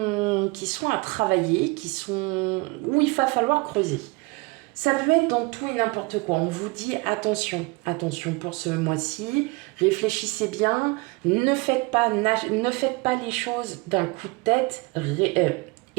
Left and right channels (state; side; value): quieter; left; 25.7 dB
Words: à travailler, où il va falloir creuser. Ça peut être dans tout et n'importe quoi. On vous dit attention, attention pour ce mois-ci, réfléchissez bien, ne faites pas les choses d'un coup de tête,